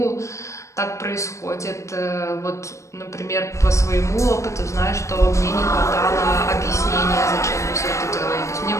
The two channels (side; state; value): right; late; 0.15 ms